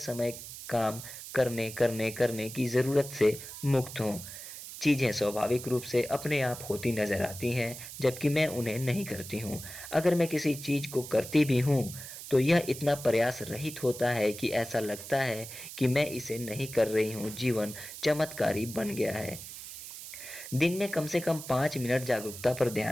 काम करने की ज़रूरत से मुक्त हूँ। चीज़ें स्वाभाविक रूप से अपने आप होती नज़र आती हैं, जबकि मैं उन्हें नहीं करती हूँ। अगर मैं किसी चीज़ को करती भी हूँ, तो यह इतना प्रयास रहित होता है कि ऐसा लगता है कि मैं इसे नहीं कर रही हूँ। जीवन चमत्कारी बन गया है। दिन में कम से कम 5 मिनट जागरूकता पर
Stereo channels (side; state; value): right; noise; hiss, 12 dB below the sound